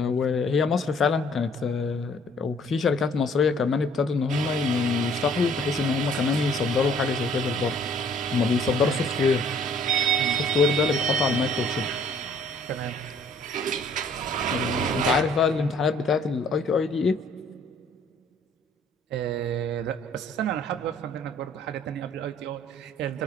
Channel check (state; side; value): normal; both; correlation 0.59